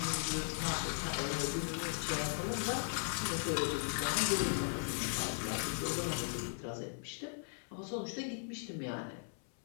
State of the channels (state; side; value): silent; right; 52 dB below the other